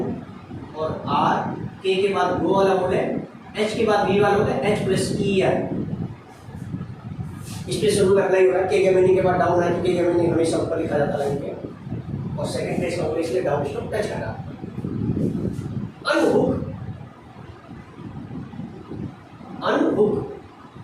और आर के बाद गो वाला बोले, एच के बाद वी वाला बोले, एच प्लस ई आर। इस पे शुरू करना ही होगा। के मीनिंग के बाद डाउन है तो के मीनिंग हमेशा ऊपर लिखा जाता है इनके, और सेकंड प्लेस का बोले इसलिए डाउन स्ट्रोक टच करा। अनहुक, अनहुक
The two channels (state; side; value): identical; both; correlation 1.00